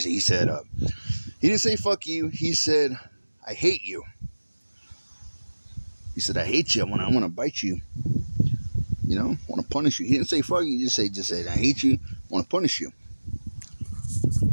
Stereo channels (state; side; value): inverted; both; correlation -1.00